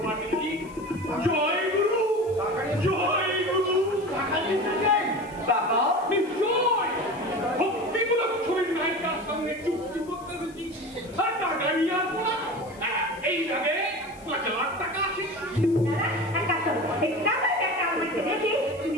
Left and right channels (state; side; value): noise; left; hiss, 25 dB below the sound